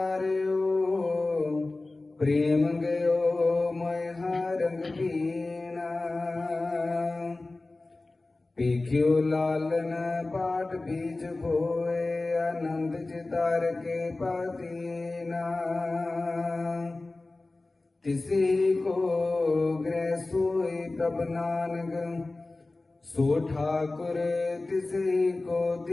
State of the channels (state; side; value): quieter; right; 3.1 dB